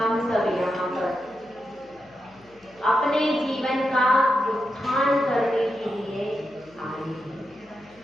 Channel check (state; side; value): noise; left; hum, 30 dB below the sound